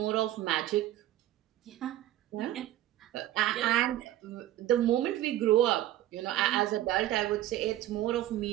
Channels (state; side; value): quieter; left; 13.9 dB